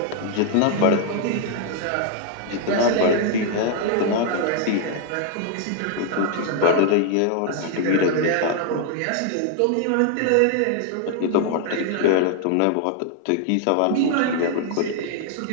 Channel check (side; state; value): both; different; correlation 0.00